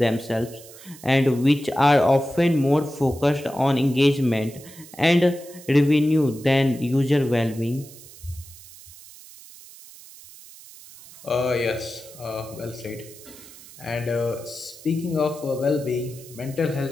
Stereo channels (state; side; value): noise; right; hiss, 19 dB below the sound